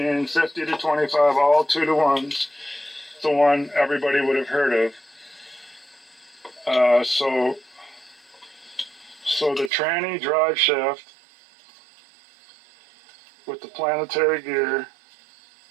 50 to 25, all 2 to 1s. The one everybody would have heard of. So the tranny drive shaft with the planetary gear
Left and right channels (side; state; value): left; drops out; at 9.7 s